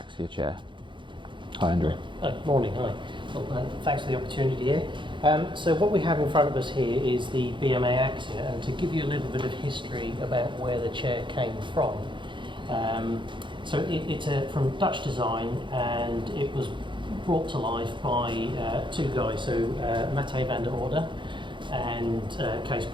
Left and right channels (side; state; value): left; late; 0.23 ms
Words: chair. Hi Andrew. Morning, hi. Well, thanks for the opportunity here. So what we have in front of us here is the BMA Axia, and to give you a little bit of history about where the chair came from. So it's from Dutch design, and it was brought to life by two guys, so Matthijs van der Orde and Kees